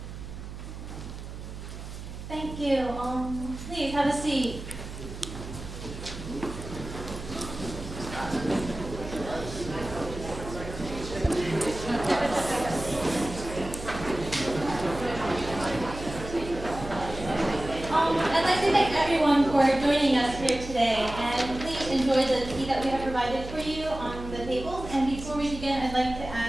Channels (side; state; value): right; noise; hum, 10 dB below the sound